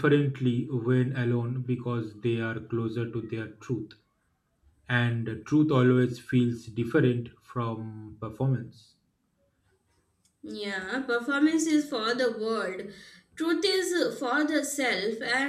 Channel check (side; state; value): both; identical; correlation 1.00